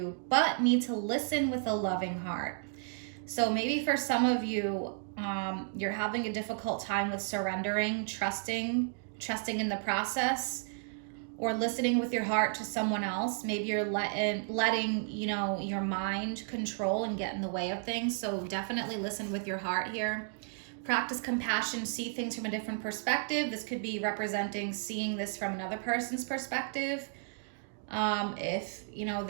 but need to listen with a loving heart. So maybe for some of you, you're having a difficult time with surrendering, trusting in the process, or listening with your heart to someone else. Maybe you're letting you know, your mind control and get in the way of things. So definitely listen with your heart here. Practice compassion, see things from a different perspective. This could be representing seeing this from another person's perspective. If, you know,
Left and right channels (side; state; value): left; silent; digital silence